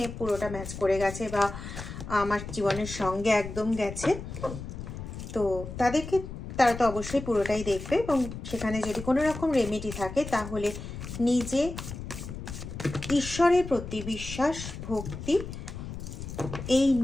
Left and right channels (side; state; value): left; noise; rumble, 9 dB below the sound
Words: পুরোটা ম্যাচ করে গেছে বা আমার জীবনের সঙ্গে একদম গেছে, তো তারা তো অবশ্যই পুরোটাই দেখবে। এবং সেখানে যদি কোনো রকম রেমেডি থাকে তাহলে নিজে ঈশ্বরের প্রতি বিশ্বাস ভক্তি এই